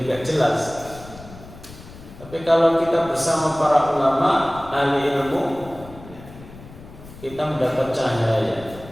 gak jelas. Tapi kalau kita bersama para ulama, ahli ilmu, kita mendapat cahaya.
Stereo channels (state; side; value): noise; left; rumble, 17 dB below the sound